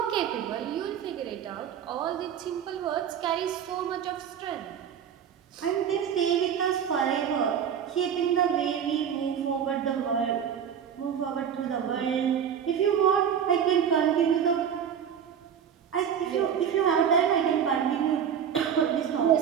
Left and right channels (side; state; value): left; quieter; 8.3 dB